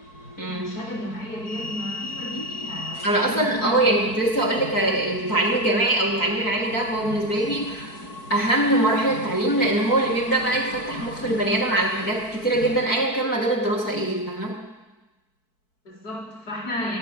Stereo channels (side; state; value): right; late; 4.6 ms